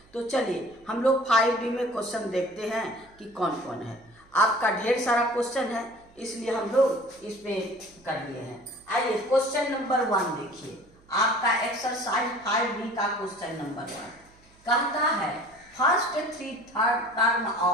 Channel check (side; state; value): right; noise; hum, 29 dB below the sound